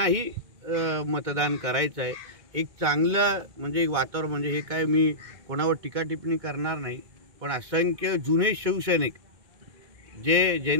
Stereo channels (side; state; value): left; late; 2.2 ms